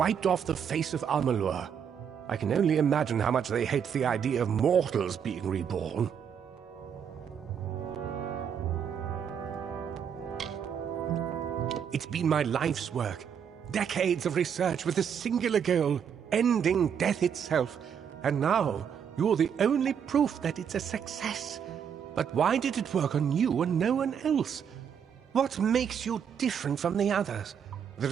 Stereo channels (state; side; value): quieter; left; 7.8 dB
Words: off the face of Amalur. I can only imagine how much they hate the idea of mortals being reborn. It's been my life's work. Decades of research with a singular goal, ending death itself. And now, you're the only proof that it's a success. But why did it work on you and no one else? What makes you different from the others? There